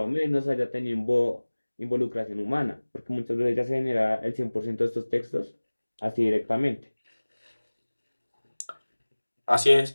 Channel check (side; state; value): both; inverted; correlation -1.00